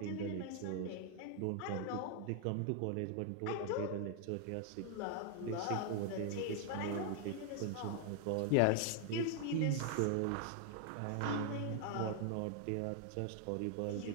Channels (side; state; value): both; different; correlation 0.00